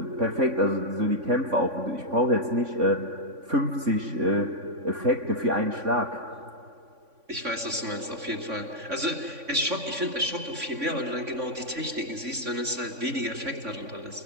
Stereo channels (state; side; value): late; left; 3.5 ms